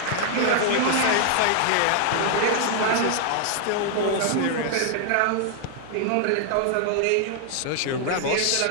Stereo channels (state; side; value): different; both; correlation 0.00